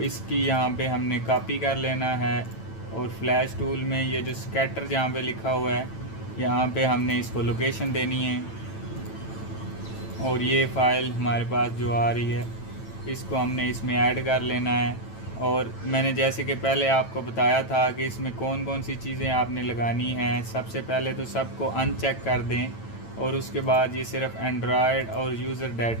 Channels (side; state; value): right; late; 9.0 ms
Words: इसकी यहाँ पे हमने कॉपी कर लेना है और फ्लैश टूल में ये जो स्कैटर जहाँ पे लिखा हुआ है यहाँ पे हमने इसको लोकेशन देनी है। और ये फ़ाइल हमारे पास जो आ रही है इसको हमने इसमें ऐड कर लेना है। और मैंने जैसे कि पहले आपको बताया था कि इसमें कौन कौन सी चीज़ें आपने लगानी हैं। सबसे पहले तो सबको अनचेक कर दें और उसके बाद ये सिर्फ एंड्रॉयड और यूज़र